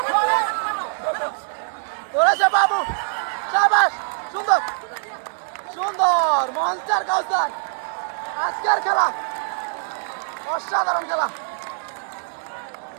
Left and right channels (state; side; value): silent; left; digital silence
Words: ধরেছে বাবু সাবাস সুন্দর সুন্দর মনস্টার কাউসার আজকের খেলা অসাধারণ খেলা।